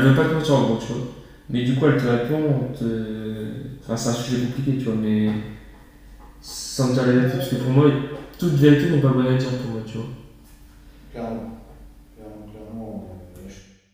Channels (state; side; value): identical; both; correlation 1.00